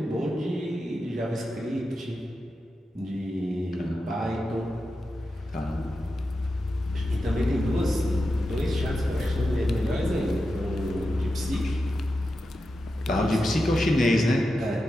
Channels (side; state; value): both; normal; correlation 0.90